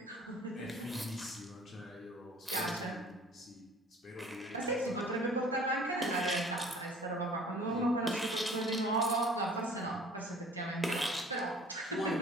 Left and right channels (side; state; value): both; normal; correlation 0.49